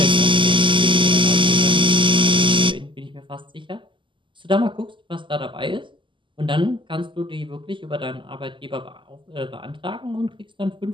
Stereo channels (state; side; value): late; left; 0.24 ms